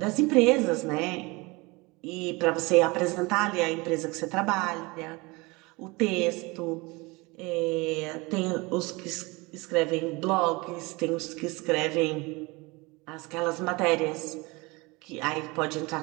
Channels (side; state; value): left; quieter; 24.9 dB